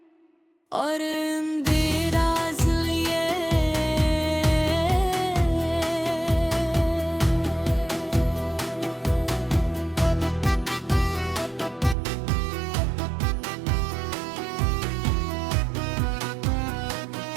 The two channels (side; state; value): left; drops out; at 12.0 s